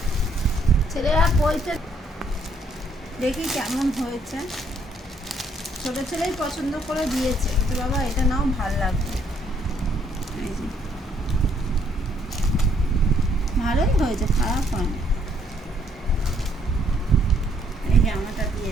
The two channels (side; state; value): both; normal; correlation 0.68